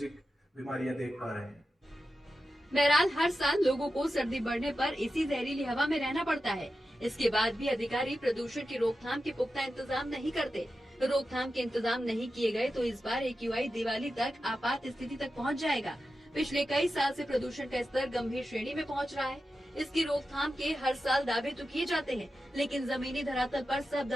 बीमारियां देख पा रहे हैं। बहरहाल हर साल लोगों को सर्दी बढ़ने पर इसी जहरीली हवा में रहना पड़ता है। इसके बाद भी अधिकारी प्रदूषण की रोकथाम के पुख्ता इंतजाम नहीं करते। रोकथाम के इंतजाम नहीं किए गए तो इस बार AQI दिवाली तक आपात स्थिति तक पहुंच जाएगा। पिछले कई साल से प्रदूषण का स्तर गंभीर श्रेणी में पहुंच रहा है। इसकी रोकथाम के हर साल दावे तो किए जाते हैं, लेकिन जमीनी धरातल पर सब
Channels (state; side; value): normal; both; correlation 0.91